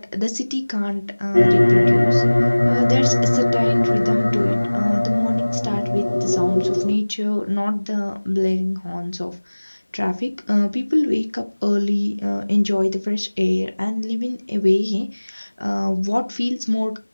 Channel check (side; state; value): both; inverted; correlation -1.00